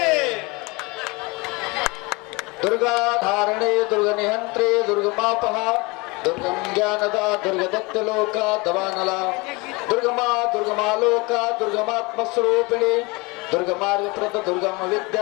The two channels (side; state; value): right; quieter; 26.0 dB